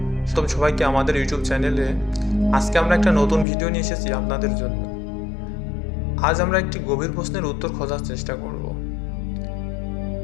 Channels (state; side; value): drops out; right; at 3.5 s